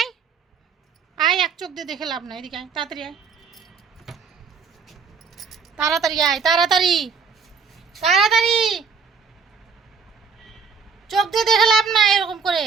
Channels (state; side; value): quieter; left; 5.8 dB